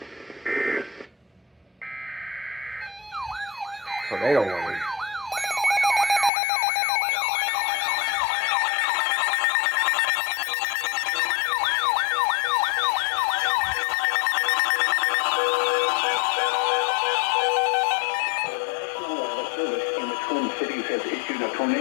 Tornado warning. Cities has issued a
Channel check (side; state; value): right; drops out; at 6.3 s